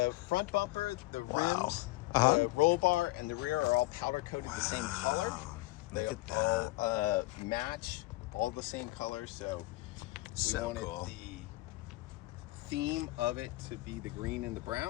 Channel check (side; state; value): right; quieter; 20.4 dB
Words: front bumper, the Wow. rims, Uh-huh. the roll bar, and the rear are all powder coated the same color. They Look at all match, all the same color. So we So wanted cool. the theme of it to be the green and the